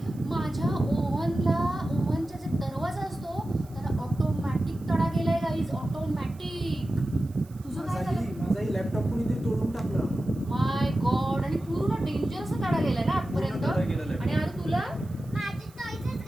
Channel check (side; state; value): right; noise; hiss, 27 dB below the sound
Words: माझ्या ओव्हनचा जे दरवाजा असतो त्याला ऑटोमॅटिक तडा गेलाय गाईज, ऑटोमॅटिक. तुझं काय झालं? माझाही लॅपटॉप कोणीतरी तोडून टाकलं. माय गॉड. आणि पूर्ण डेंजर असं तडा गेलाय ना आजपर्यंत. आणि अरे तुला माझे टॉयज